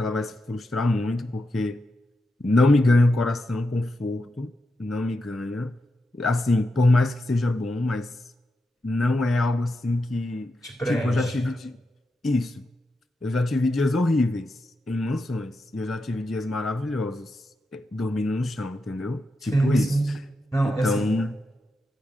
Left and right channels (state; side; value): normal; both; correlation 0.87